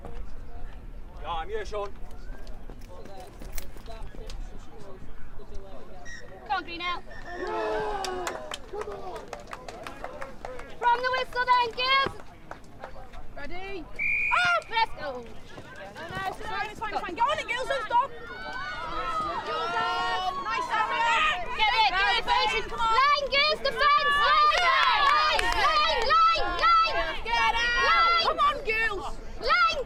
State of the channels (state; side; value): identical; both; correlation 1.00